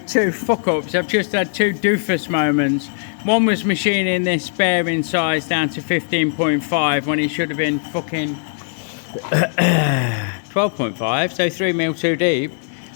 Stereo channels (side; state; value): right; silent; digital silence